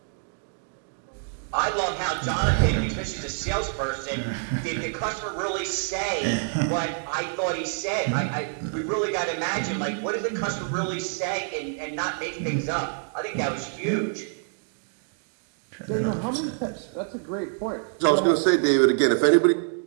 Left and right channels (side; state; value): left; silent; 60 dB below the other